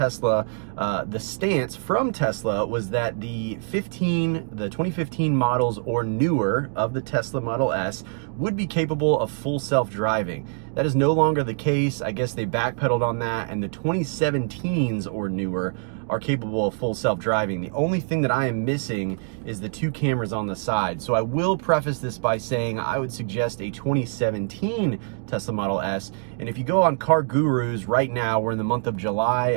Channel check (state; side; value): silent; left; 55 dB below the other